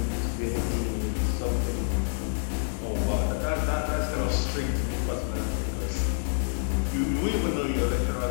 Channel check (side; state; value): right; silent; digital silence